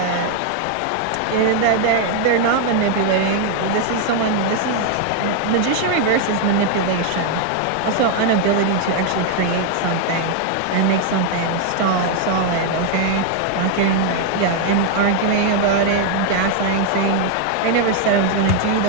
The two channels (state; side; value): different; both; correlation 0.00